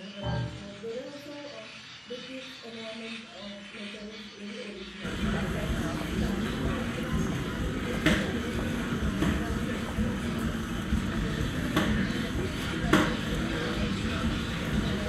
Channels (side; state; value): both; identical; correlation 1.00